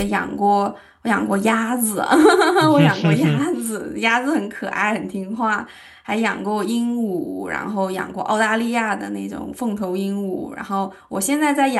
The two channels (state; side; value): identical; both; correlation 1.00